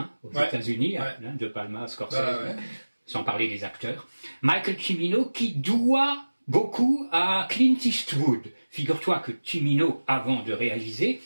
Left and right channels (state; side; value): inverted; both; correlation -1.00